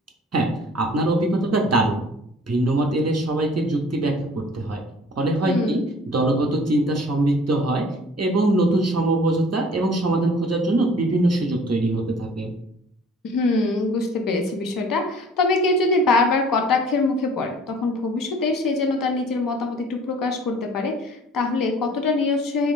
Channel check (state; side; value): normal; both; correlation 0.50